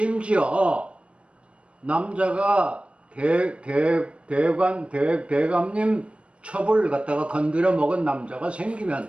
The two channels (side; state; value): left; late; 0.060 ms